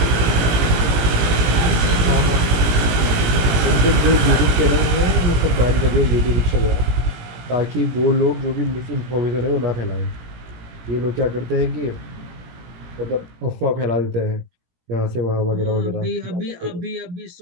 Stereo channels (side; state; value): left; late; 17 ms